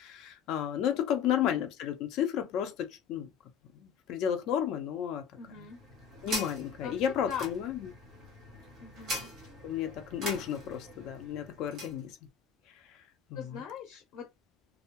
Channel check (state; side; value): quieter; right; 7.9 dB